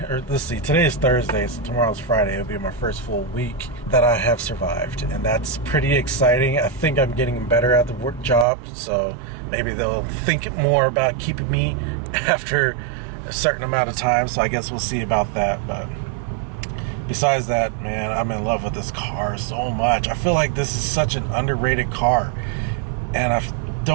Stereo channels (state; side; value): drops out; left; at 8.5 s